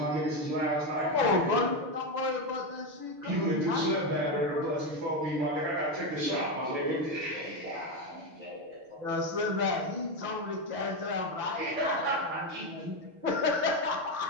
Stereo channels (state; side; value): late; left; 6.5 ms